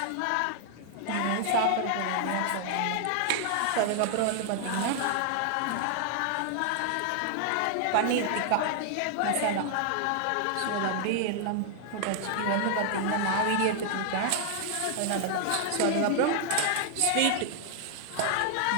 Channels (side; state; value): both; different; correlation 0.00